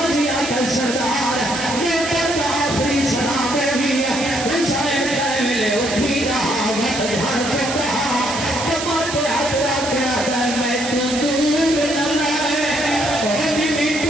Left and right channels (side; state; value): right; noise; hiss, 6 dB below the sound